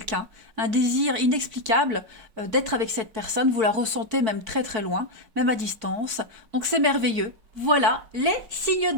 un désir inexplicable d'être avec cette personne, vous la ressentez même très loin, même à distance, donc c'est merveilleux. Voilà, les signes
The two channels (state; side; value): late; left; 4.5 ms